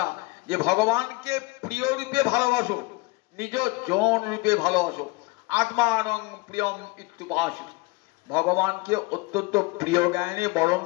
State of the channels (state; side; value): quieter; right; 23.9 dB